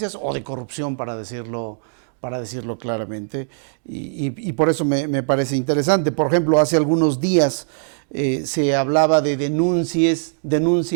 o de corrupción, para decirlo claramente, y por eso me parece interesante. Por ejemplo, hace algunos días se hablaba de denuncias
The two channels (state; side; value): silent; left; digital silence